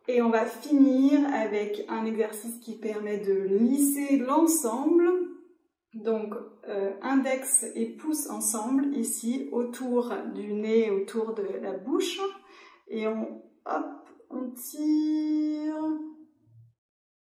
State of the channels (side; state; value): both; identical; correlation 1.00